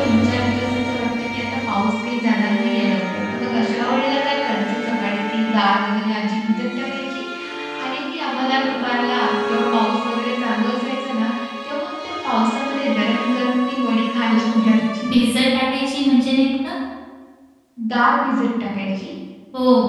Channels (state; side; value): identical; both; correlation 1.00